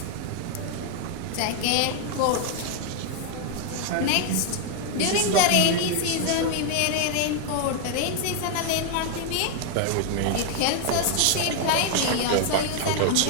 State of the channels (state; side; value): different; both; correlation 0.00